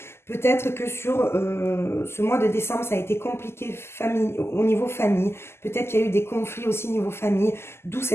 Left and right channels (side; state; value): right; late; 0.12 ms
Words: Peut-être que sur ce mois de décembre, ça a été compliqué au niveau famille. Peut-être qu'il y a eu des conflits aussi au niveau famille, d'où